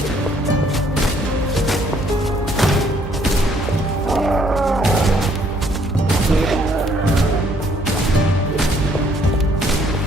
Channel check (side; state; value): both; normal; correlation 0.65